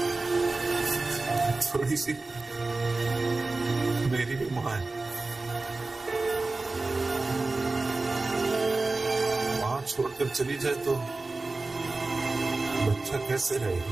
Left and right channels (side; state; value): left; quieter; 3.4 dB